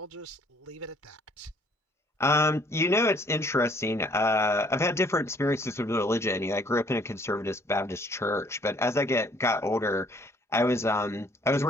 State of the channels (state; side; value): normal; both; correlation 0.61